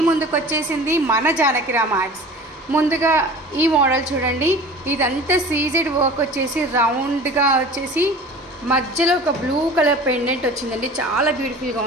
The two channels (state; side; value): normal; both; correlation 0.40